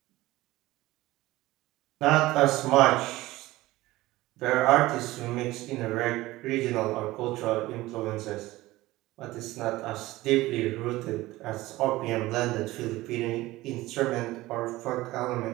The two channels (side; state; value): left; quieter; 18.2 dB